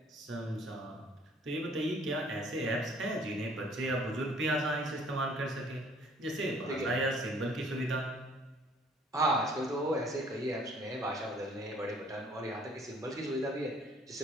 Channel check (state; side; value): normal; both; correlation 0.57